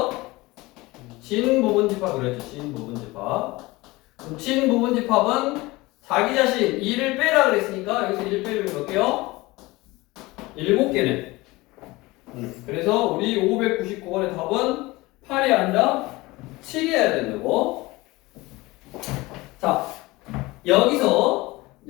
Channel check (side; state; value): right; quieter; 21.2 dB